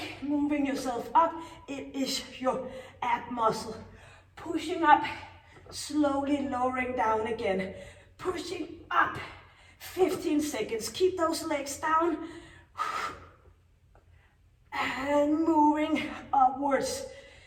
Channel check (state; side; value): identical; both; correlation 1.00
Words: moving yourself up. It is your ab muscle. Pushing up, slowly lowering down again. Pushing up. 15 seconds. Keep those legs down. And moving upwards.